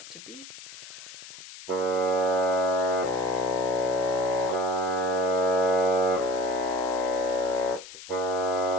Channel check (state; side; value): noise; left; hiss, 15 dB below the sound